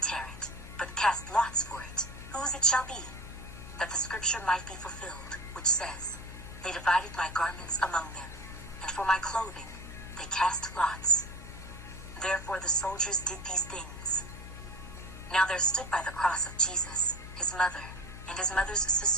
tear it, but cast lots for it, whose it shall be," that the scripture might be fulfilled, which says, "They divided my garments among them, and for my clothing they cast lots." Therefore the soldiers did these things. Now there stood by the cross of Jesus his mother, and his mother's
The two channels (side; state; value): left; noise; hum, 13 dB below the sound